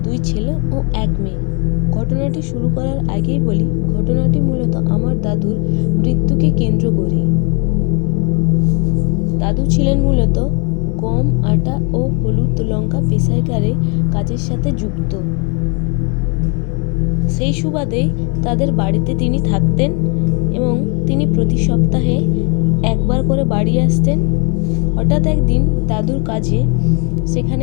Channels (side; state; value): right; quieter; 34.6 dB